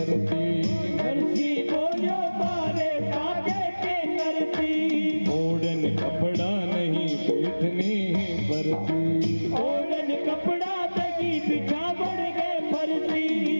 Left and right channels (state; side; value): inverted; both; correlation -1.00